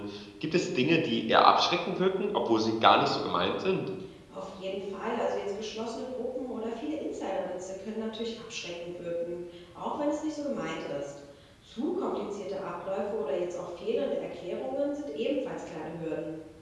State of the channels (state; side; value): identical; both; correlation 1.00